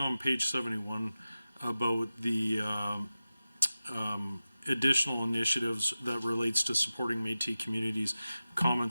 page 71 about the additional initiatives that relates to supporting Métis communities,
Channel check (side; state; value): both; inverted; correlation -0.95